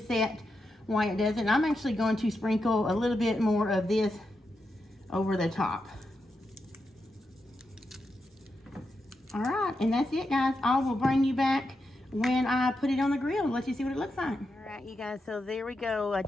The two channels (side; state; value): both; normal; correlation 0.86